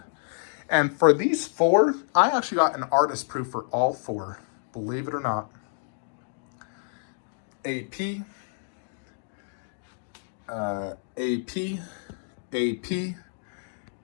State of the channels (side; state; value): right; silent; digital silence